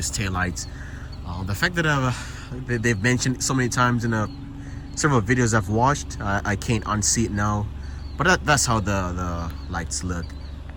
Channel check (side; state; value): both; identical; correlation 1.00